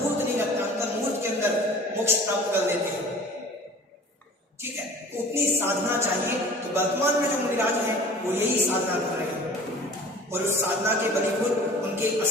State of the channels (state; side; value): normal; both; correlation 0.44